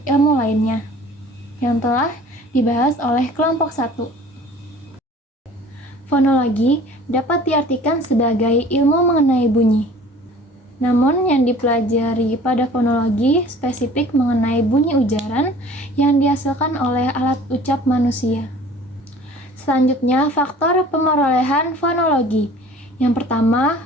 ilmu lainnya yang telah dibahas oleh kelompok 1. Fonologi dapat diartikan sebagai ilmu mengenai bunyi. Namun yang dipelajari pada fonologi spesifik mengenai bunyi ujaran yang dihasilkan oleh alat ucap manusia. Selanjutnya, faktor pemerolehan fonologi. Yang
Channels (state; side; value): normal; both; correlation 0.47